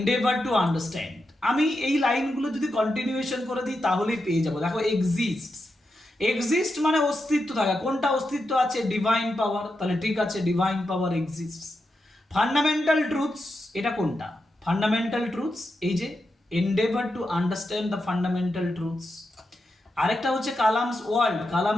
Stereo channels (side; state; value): both; normal; correlation 0.87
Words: টু আন্ডারস্ট্যান্ড। আমি এই লাইনগুলো যদি কন্টিনিউয়েশন করে দিই তাহলেই পেয়ে যাবো। দেখো এক্সিস্ট, এক্সিস্ট মানে অস্তিত্ব থাকা, কোনটা অস্তিত্ব আছে? ডিভাইন পাওয়ার, তাহলে ঠিক আছে divine power exist. Fundamental truths, এটা কোনটা? ফান্ডামেন্টাল ট্রুথস, এই যে endeavour to understand the fundamental truths. আরেকটা হচ্ছে কালামস ওয়ার্ল্ড,